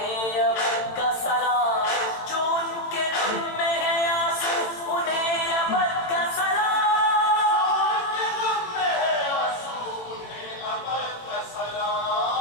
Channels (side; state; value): right; late; 18 ms